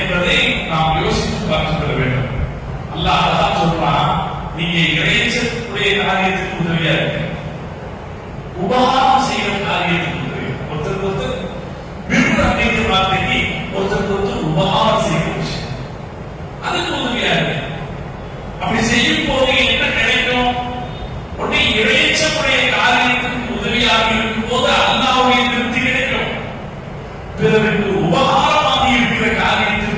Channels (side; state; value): both; identical; correlation 1.00